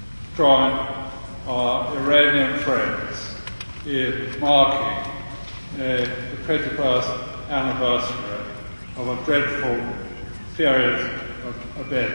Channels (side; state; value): both; inverted; correlation -1.00